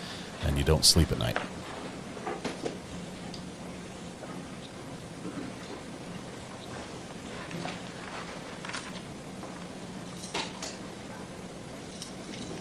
and you don't sleep at night.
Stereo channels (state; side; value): identical; both; correlation 1.00